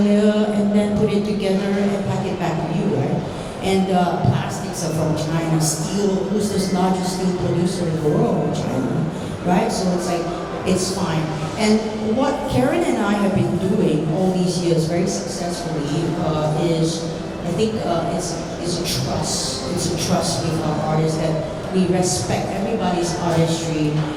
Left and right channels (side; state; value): both; identical; correlation 1.00